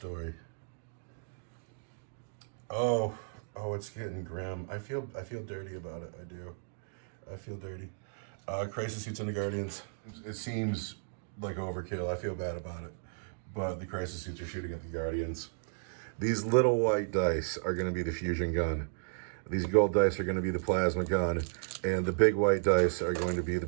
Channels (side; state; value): left; silent; digital silence